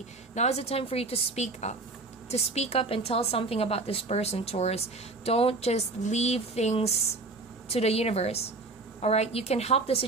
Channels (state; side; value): quieter; left; 3.4 dB